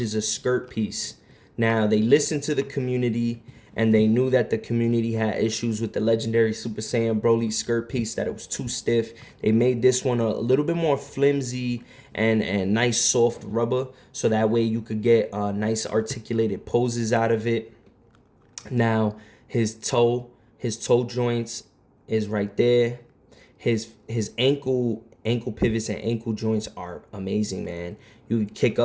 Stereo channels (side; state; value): both; identical; correlation 1.00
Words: a skirt piece. Now, they listened to the community, and they knew that the community had issues with the legendary Super Saiyan Broly skirt piece, that it was too stiff. They made this one a little bit more flimsy and nice soft rubber, so that way you could get nice articulated poses out of it. Now, his toe joints is right there. His ankle pivots and ankle joints are amazing, man. You kick